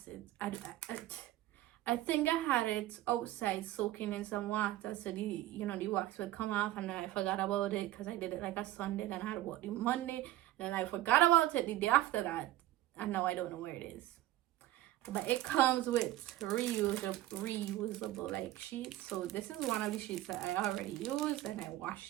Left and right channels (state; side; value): quieter; left; 15.3 dB